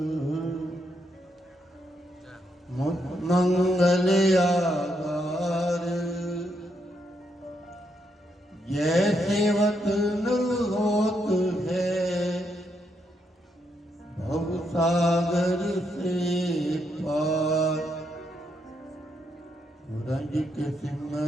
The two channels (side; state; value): both; normal; correlation 0.78